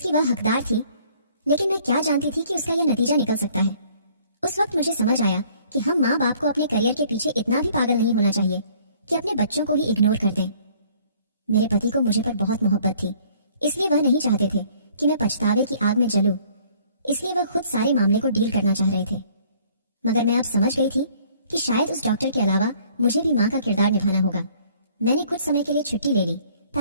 वह हकदार थी, लेकिन मैं क्या जानती थी कि उसका यह नतीजा निकल सकता है। उस वक्त मुझे समझ आया कि हम माँ बाप को अपने करियर के पीछे इतना भी पागल नहीं होना चाहिए कि अपने बच्चों को ही इग्नोर कर दें। मेरे पति को मुझे पर बहुत मोहब्बत थी, इसलिए वह नहीं चाहते थे कि मैं पछतावे की आग में जलूं। इसलिए वह खुद सारे मामले को डील करना चाह रहे थे। मगर मैं अब समझ गई थी कि शायद उस डॉक्टर के अलावा मुझे भी माँ का किरदार निभाना होगा। मैंने कुछ समय के लिए छुट्टी ले ली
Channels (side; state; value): both; inverted; correlation -0.58